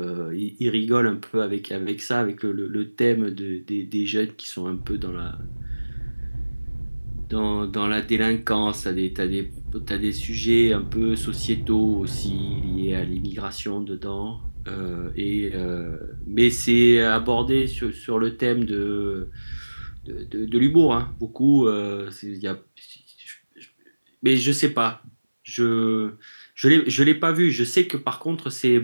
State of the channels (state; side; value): inverted; both; correlation -1.00